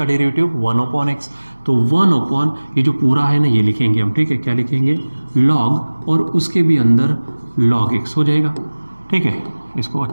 डेरिवेटिव 1/x, तो 1/, ये जो पूरा है ना ये लिखेंगे हम, ठीक है, क्या लिखेंगे, log और उसके भी अंदर log x हो जाएगा, ठीक है। इसको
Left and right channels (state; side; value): inverted; both; correlation -1.00